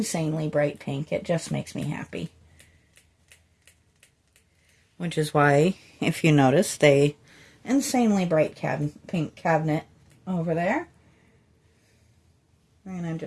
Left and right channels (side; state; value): both; identical; correlation 1.00